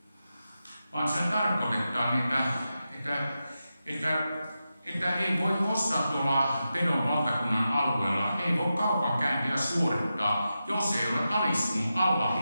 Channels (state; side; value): inverted; both; correlation -0.90